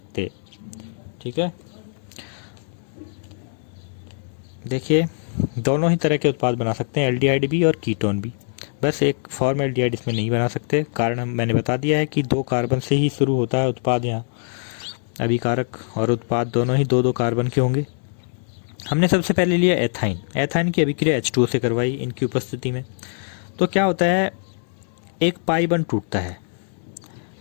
ठीक है, देखिए दोनों ही तरह के उत्पाद बना सकते हैं, एल्डिहाइड भी और कीटोन भी, बस एक फॉर्मेल्डिहाइड इसमें नहीं बना सकते। कारण मैंने बता दिया है कि 2 कार्बन से ही शुरू होता है उत्पाद, यहाँ अभिकारक और उत्पाद दोनों ही 2-2 कार्बन के होंगे। हमने सबसे पहले लिया एथाइन। एथाइन की अभिक्रिया H2O से करवाई इनकी उपस्थिति में, तो क्या होता है, एक पाई बंध टूटता है,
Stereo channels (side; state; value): right; silent; 64 dB below the other